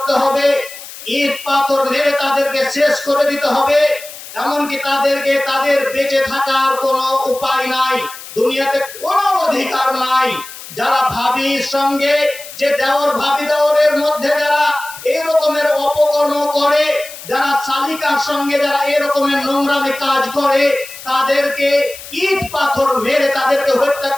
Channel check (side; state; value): left; noise; hiss, 14 dB below the sound